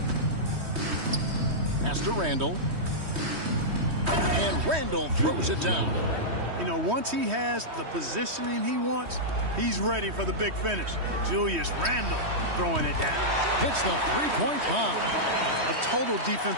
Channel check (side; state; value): left; late; 3.2 ms